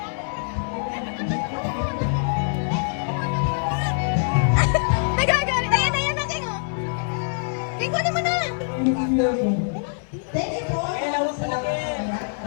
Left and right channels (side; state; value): right; silent; digital silence